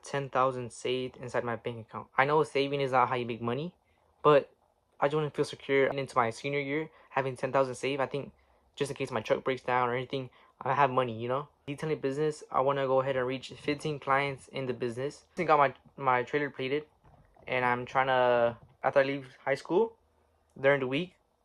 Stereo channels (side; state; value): both; identical; correlation 1.00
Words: 10,000 saved inside my bank account. I know saving is not how you make money, but I just want to feel secure. And into my senior year, having 10,000 saved, I think just in case my truck breaks down or anything, I have money. Detailing business, I want to go ahead and reach 15 clients in the business. I got my trailer plated, and I'm trying to, after I leave high school, during the week,